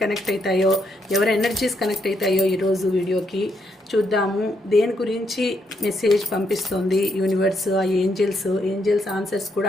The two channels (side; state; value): both; normal; correlation 0.76